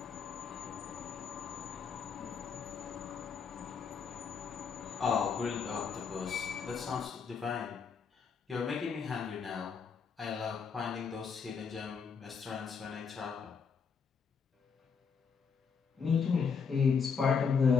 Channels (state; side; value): quieter; right; 6.0 dB